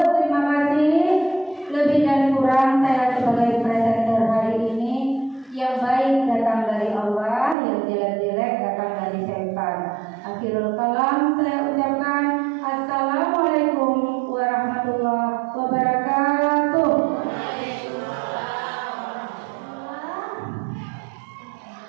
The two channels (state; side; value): drops out; left; at 7.6 s